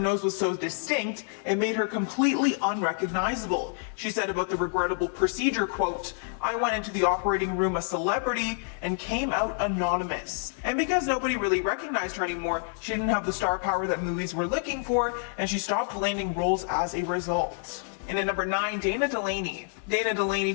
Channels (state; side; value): silent; right; 59 dB below the other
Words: was so distinct, it made her completely unrecognizable. She said about the regrettable procedure, quote, "I went into the operating room a celebrity and came out anonymous." And because nobody really recognized her anymore, she didn't have the star power that movies were looking for, and she stopped landing roles as a result. And at number 9, Dana Delaney. Dana Delaney